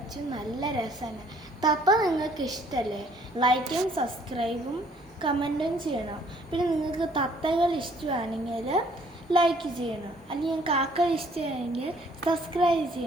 നല്ല രസമാണ്. തത്ത നിങ്ങൾക്ക് ഇഷ്ടമല്ലേ? ലൈക്കും സബ്സ്ക്രൈബും കമൻറ്റും ചെയ്യണം. പിന്നെ നിങ്ങൾക്ക് തത്തകൾ ഇഷ്ടമാണെങ്കിൽ ലൈക്ക് ചെയ്യണം. അല്ലെങ്കിൽ കാക്ക ഇഷ്ടമാണെങ്കിൽ സബ്സ്ക്രൈബ്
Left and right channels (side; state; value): both; normal; correlation 0.61